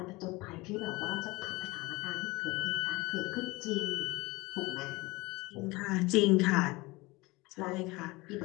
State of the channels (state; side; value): quieter; right; 22.7 dB